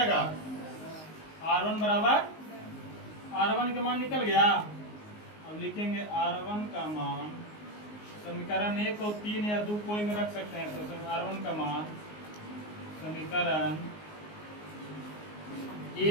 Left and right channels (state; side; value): late; right; 19 ms